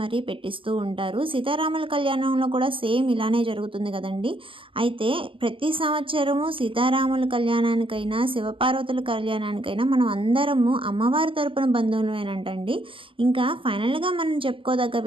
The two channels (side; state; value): left; late; 0.25 ms